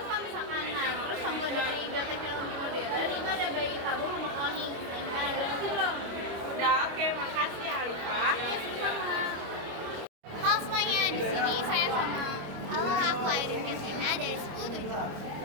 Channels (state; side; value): late; left; 25 ms